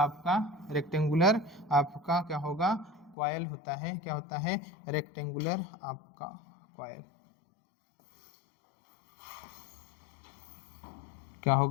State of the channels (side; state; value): right; drops out; at 3.2 s